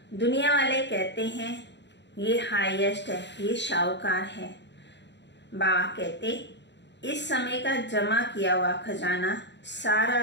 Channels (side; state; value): right; late; 0.52 ms